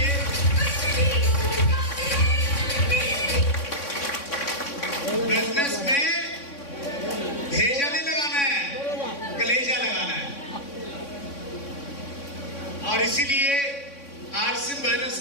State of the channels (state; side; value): late; right; 3.6 ms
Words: बिजनेस में भेजा नहीं लगाना है, कलेजा लगाना है। और इसीलिए आरसीएम बिजनेस